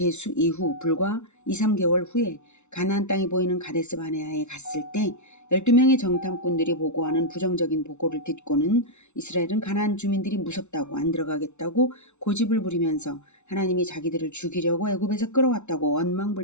이후 불과 2, 3개월 후에 가나안 땅이 보이는 가데스 바네아에 갔을 때 12명의 정탐꾼들이 보고하는 부정적인 보고를 듣고는 이스라엘은 가나안 주민들이 무섭다고 안 들어가겠다고 고집을 부리면서 하나님이 자기들을 죽이려고 애굽에서 끌어왔다고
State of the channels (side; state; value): right; late; 0.82 ms